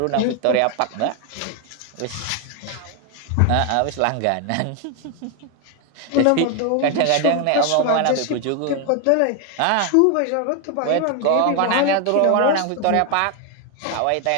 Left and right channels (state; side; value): different; both; correlation 0.01